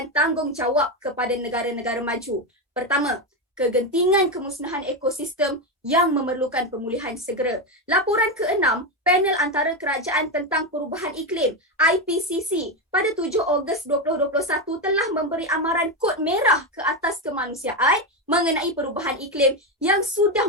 tanggungjawab kepada negara-negara maju. Pertama, kegentingan kemusnahan ekosistem yang memerlukan pemulihan segera. Laporan ke-6, Panel Antara Kerajaan tentang Perubahan Iklim IPCC pada 7 Ogos 2021 telah memberi amaran kod merah ke atas kemanusiaan mengenai perubahan iklim yang sudah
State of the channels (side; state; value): both; normal; correlation 0.11